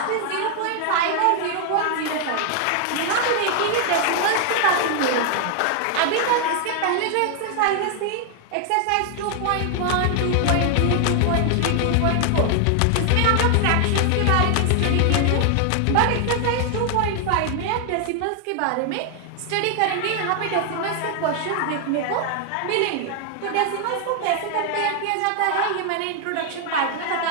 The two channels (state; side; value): different; both; correlation 0.00